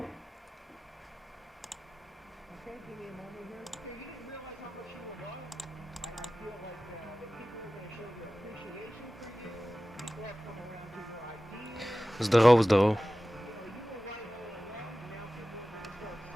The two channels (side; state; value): both; normal; correlation 0.96